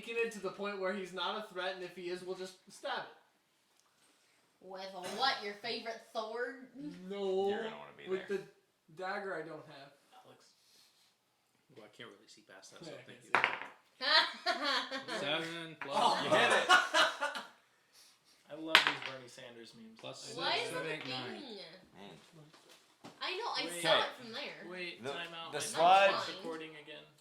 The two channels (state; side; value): identical; both; correlation 1.00